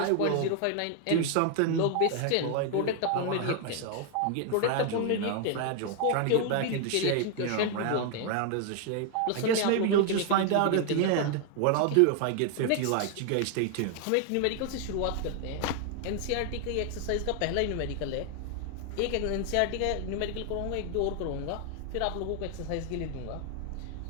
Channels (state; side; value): different; both; correlation 0.00